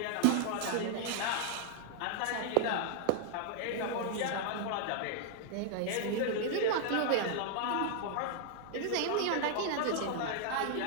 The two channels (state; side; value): different; both; correlation 0.00